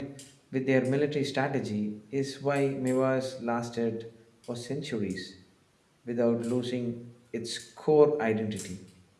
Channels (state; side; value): identical; both; correlation 1.00